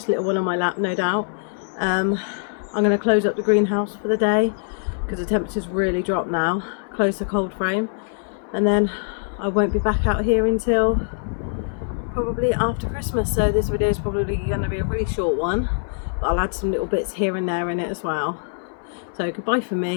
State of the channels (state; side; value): silent; right; digital silence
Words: little one on my lap, no doubt. I'm going to close up the greenhouse for the day because the temperature's really dropped now. Close the cold frame, and then I won't be back out here until probably after Christmas. So this video is probably going to be a really short one, but I'll add some little bits here and there in it as well. So goodbye from